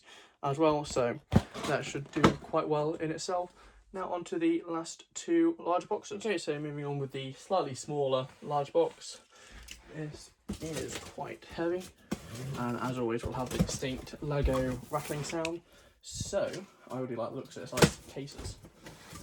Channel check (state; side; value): identical; both; correlation 1.00